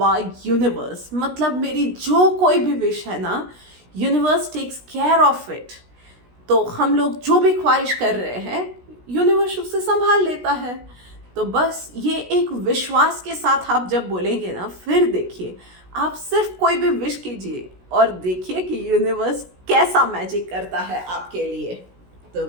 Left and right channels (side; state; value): left; late; 16 ms